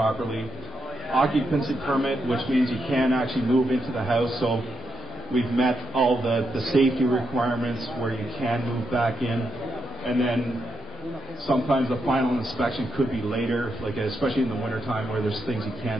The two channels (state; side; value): normal; both; correlation 0.82